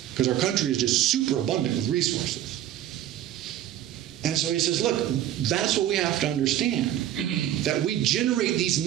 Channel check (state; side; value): quieter; left; 12.0 dB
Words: because our country is just super abundant with resources. And so he says, look, that's what we have to understand, that we generate these